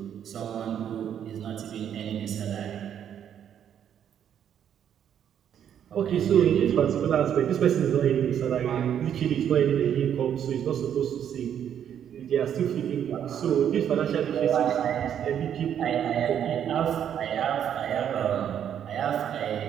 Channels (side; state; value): left; quieter; 9.3 dB